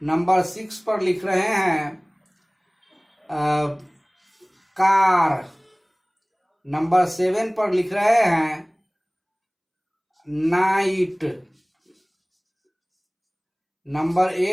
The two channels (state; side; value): identical; both; correlation 1.00